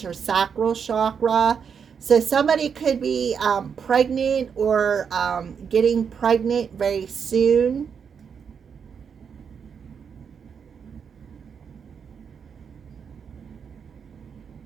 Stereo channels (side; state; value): left; quieter; 6.8 dB